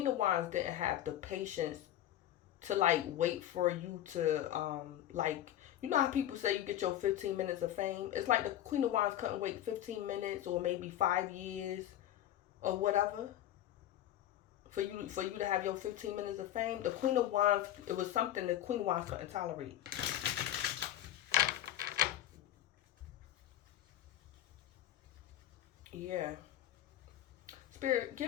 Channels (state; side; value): quieter; right; 12.5 dB